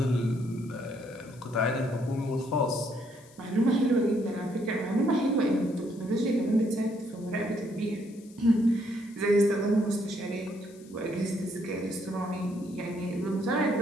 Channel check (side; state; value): left; noise; hiss, 25 dB below the sound